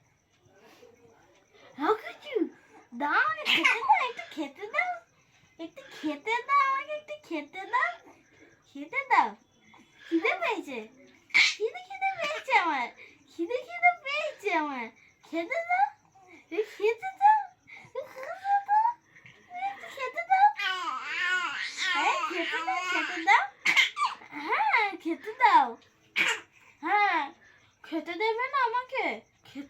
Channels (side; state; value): both; identical; correlation 1.00